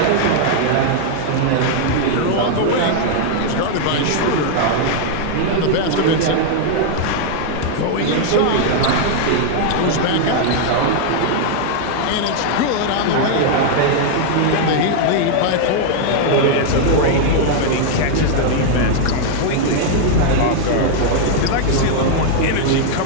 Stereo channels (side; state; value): both; different; correlation 0.00